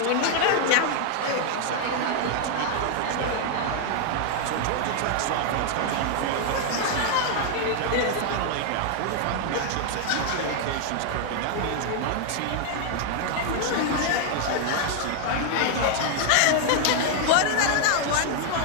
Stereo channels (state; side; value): different; both; correlation 0.00